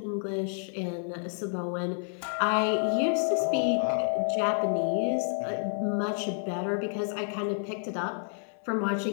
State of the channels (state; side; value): silent; right; 58 dB below the other